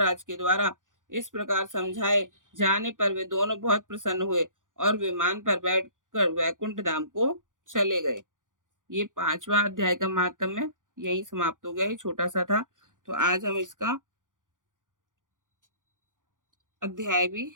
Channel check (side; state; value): left; late; 0.88 ms